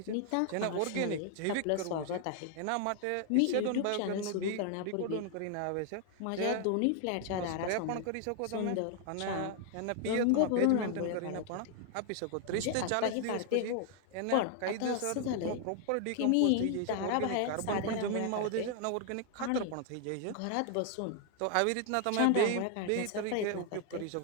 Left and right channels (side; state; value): both; different; correlation 0.00